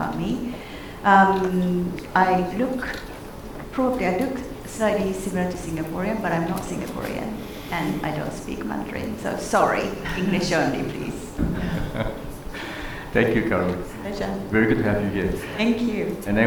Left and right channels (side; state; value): both; identical; correlation 1.00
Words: me, I look slightly similar to Singaporean, but I'm not Singaporean, and I don't speak Mandarin, so sorry, English only, please. Thank you, Kaori. Pleasure. Very good to have you here. Thank you. And